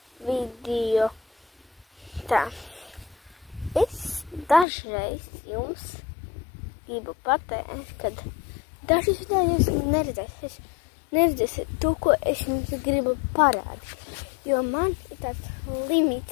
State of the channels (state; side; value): drops out; right; at 4.7 s